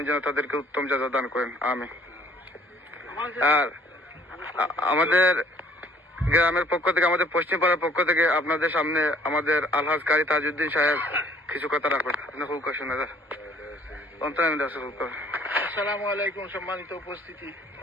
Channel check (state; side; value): normal; both; correlation 0.58